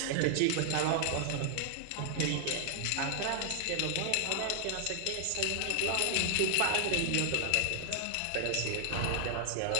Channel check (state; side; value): different; both; correlation 0.00